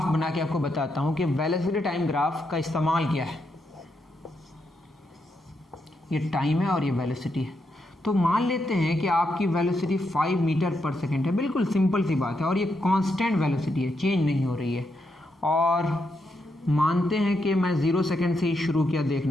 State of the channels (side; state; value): both; normal; correlation 0.81